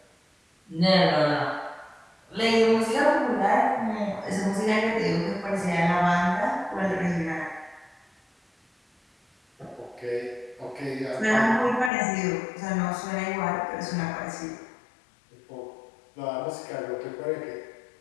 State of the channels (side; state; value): right; drops out; at 11.9 s